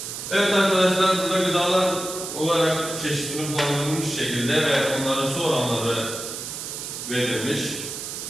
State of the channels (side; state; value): right; noise; hiss, 7 dB below the sound